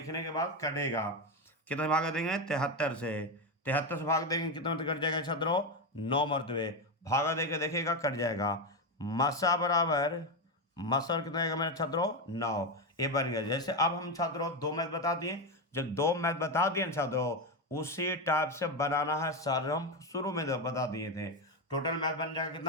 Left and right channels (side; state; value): both; normal; correlation 0.11